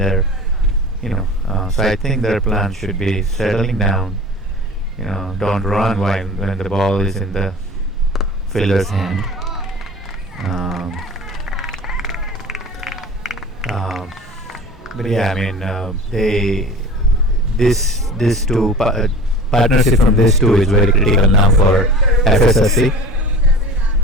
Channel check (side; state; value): both; normal; correlation 0.39